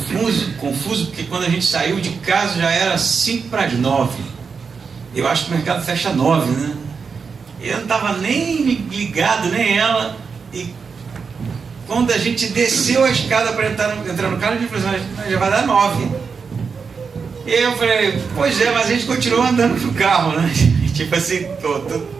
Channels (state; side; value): quieter; left; 5.5 dB